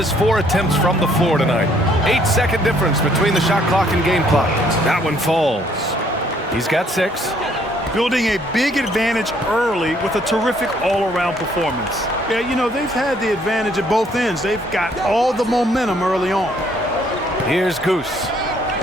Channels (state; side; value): normal; both; correlation 0.65